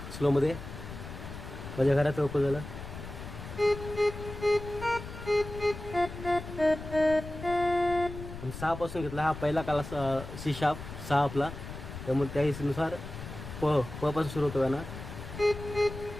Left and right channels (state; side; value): noise; left; rumble, 10 dB below the sound